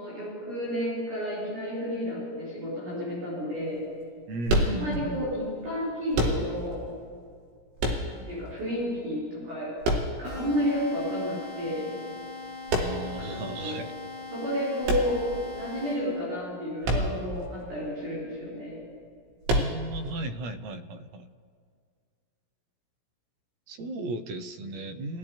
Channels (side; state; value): left; late; 17 ms